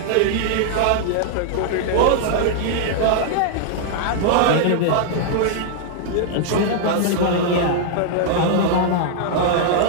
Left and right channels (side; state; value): both; different; correlation -0.01